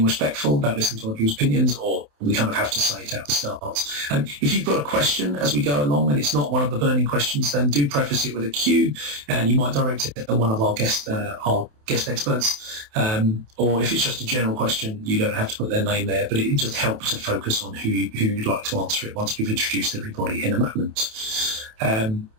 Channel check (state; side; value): late; left; 28 ms